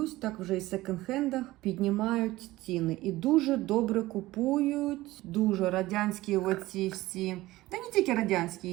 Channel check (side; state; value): left; quieter; 17.7 dB